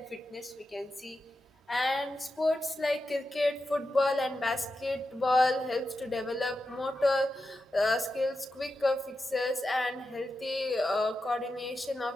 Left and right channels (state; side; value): normal; both; correlation 0.90